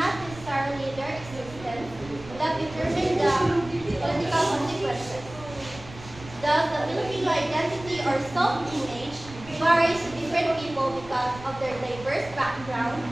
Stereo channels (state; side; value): noise; right; rumble, 17 dB below the sound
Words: necessarily their existence, that determine the political consequences. Thus, the Filipino identity or self-image varies to different people because of their diverse background